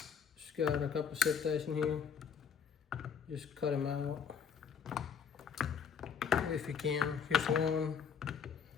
Just got a couple zip ties in here. Just cut them out if you can. Here's one.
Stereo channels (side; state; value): right; quieter; 7.1 dB